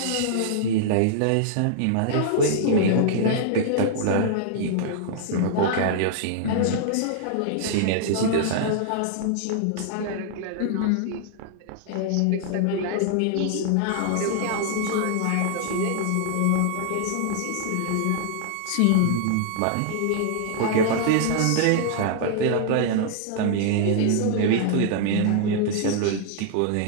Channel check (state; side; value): different; both; correlation -0.01